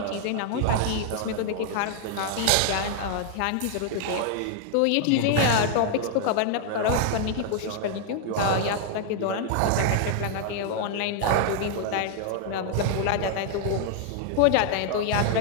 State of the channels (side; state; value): both; different; correlation 0.00